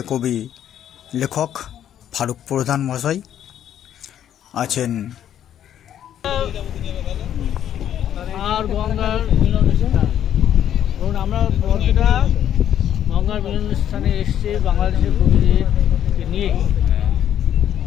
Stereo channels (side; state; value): right; quieter; 10.4 dB